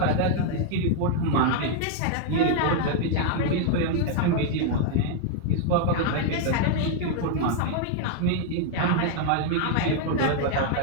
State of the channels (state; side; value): different; both; correlation 0.00